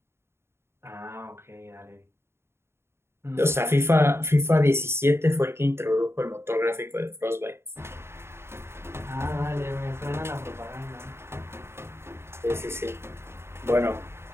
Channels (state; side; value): late; left; 0.12 ms